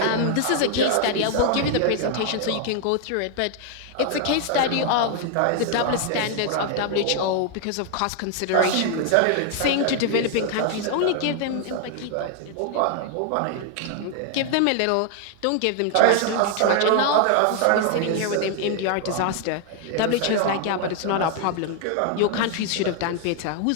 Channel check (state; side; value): different; both; correlation 0.00